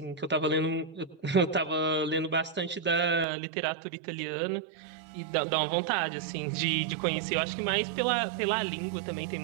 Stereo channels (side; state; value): left; drops out; at 3.2 s